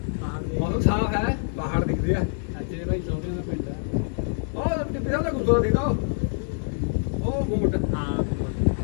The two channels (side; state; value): right; silent; digital silence